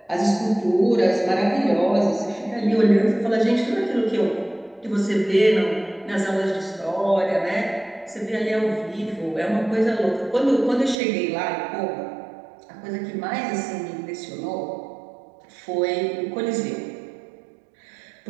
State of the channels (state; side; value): drops out; left; at 11.0 s